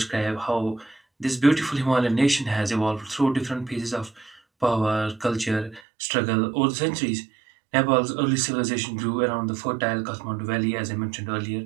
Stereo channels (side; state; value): left; drops out; at 5.8 s